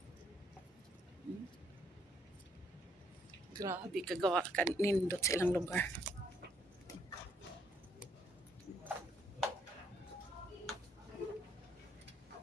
Grabe, kagawa ka nindot sa ilang lugar.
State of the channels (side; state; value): both; normal; correlation 0.70